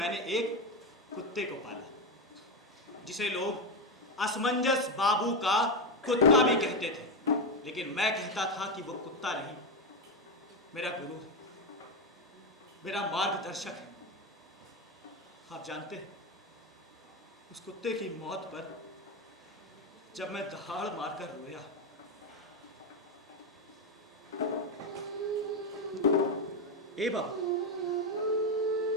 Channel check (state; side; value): normal; both; correlation 0.10